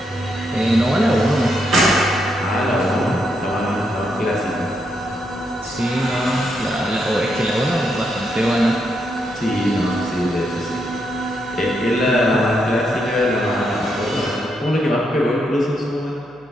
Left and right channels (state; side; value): noise; left; hum, 29 dB below the sound